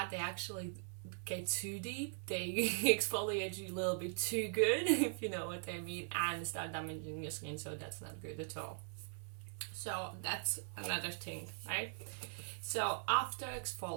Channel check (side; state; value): left; silent; digital silence